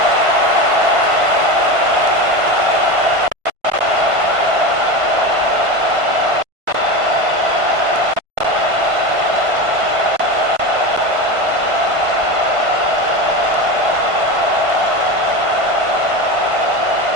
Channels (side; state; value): left; late; 1.5 ms